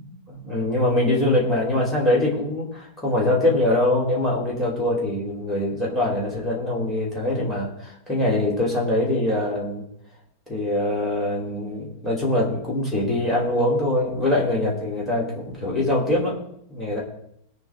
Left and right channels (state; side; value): late; left; 4.4 ms